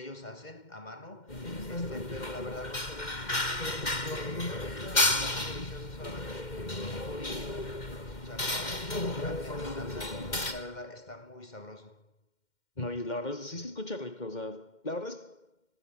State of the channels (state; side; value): late; right; 2.1 ms